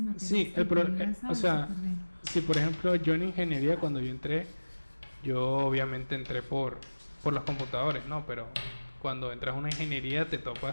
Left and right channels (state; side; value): inverted; both; correlation -1.00